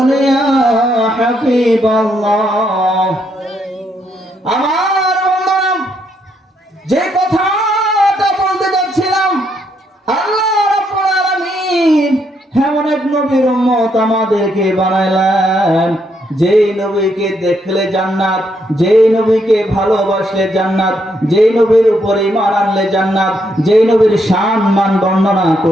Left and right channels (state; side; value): normal; both; correlation 0.75